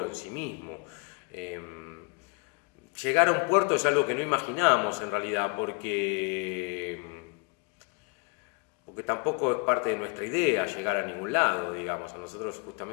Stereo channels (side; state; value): right; quieter; 33.4 dB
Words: en sí mismo. Llegar a un puerto es algo que no imaginamos en realidad, porque tampoco es parte de nuestra idea llegar a ningún lado, digamos. A nosotros